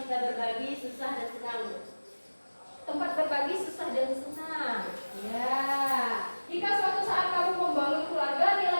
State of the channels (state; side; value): inverted; both; correlation -1.00